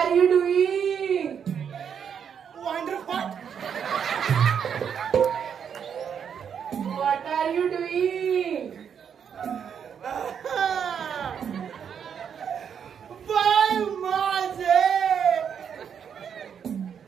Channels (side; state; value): left; quieter; 7.7 dB